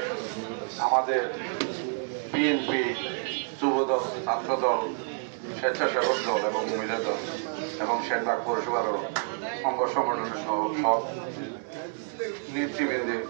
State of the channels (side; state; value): left; silent; 59 dB below the other